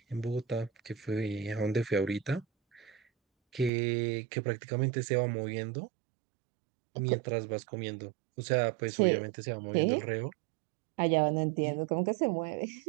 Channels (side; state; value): left; drops out; at 3.7 s